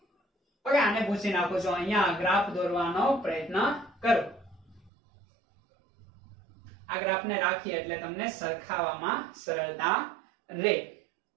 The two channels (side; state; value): left; drops out; at 4.9 s